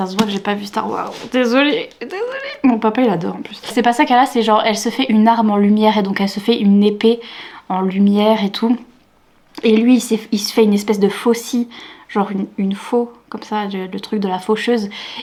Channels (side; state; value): both; identical; correlation 1.00